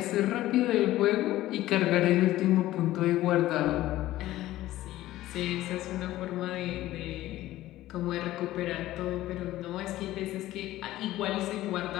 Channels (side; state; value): right; quieter; 15.4 dB